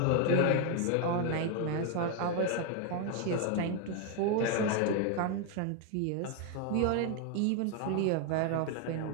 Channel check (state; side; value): different; both; correlation 0.01